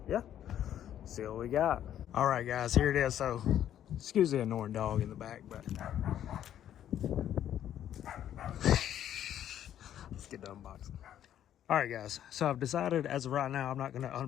yeah, see what we got. All right, guys, here it is. So excuse the annoying dog in the back, but let's get the unboxing. All right, guys, so I've decided as of right now, I'm not going to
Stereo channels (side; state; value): right; quieter; 10.8 dB